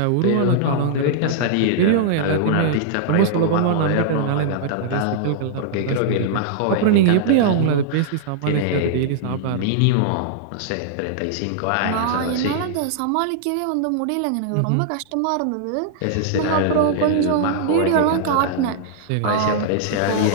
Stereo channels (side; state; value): both; different; correlation -0.01